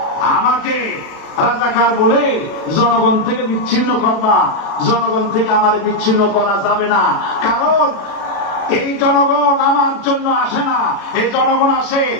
আমাকে রাজাকার বলে জনগণ থেকে বিচ্ছিন্ন করবা, জনগণ থেকে আমার বিচ্ছিন্ন করা যাবে না। কারণ এই জনগণ আমার জন্য আসে না, এই জনগণ আসে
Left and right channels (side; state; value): right; late; 36 ms